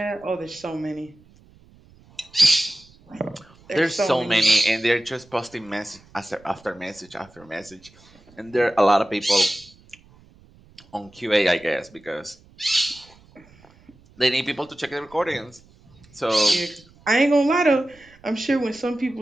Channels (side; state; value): right; noise; rumble, 27 dB below the sound